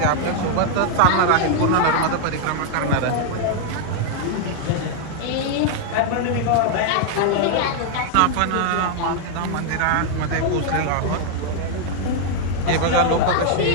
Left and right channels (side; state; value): both; different; correlation 0.00